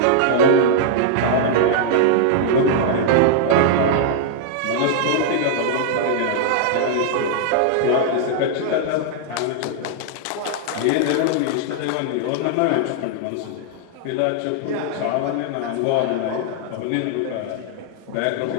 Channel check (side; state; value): both; different; correlation -0.01